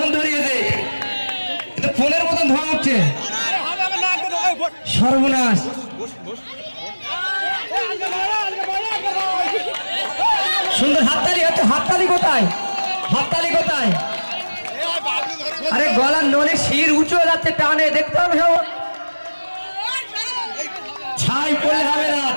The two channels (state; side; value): inverted; both; correlation -1.00